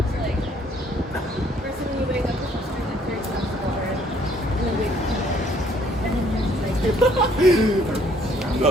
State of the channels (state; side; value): normal; both; correlation 0.63